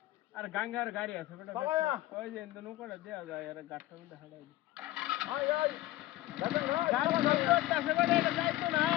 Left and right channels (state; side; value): quieter; right; 16.2 dB